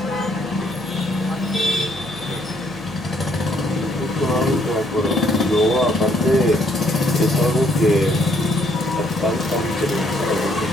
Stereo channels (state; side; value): noise; right; hum, 20 dB below the sound